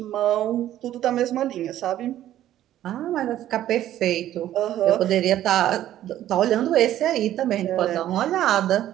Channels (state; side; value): quieter; left; 12.6 dB